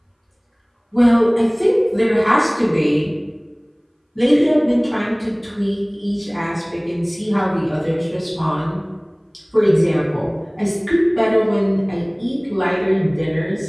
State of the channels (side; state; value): both; identical; correlation 1.00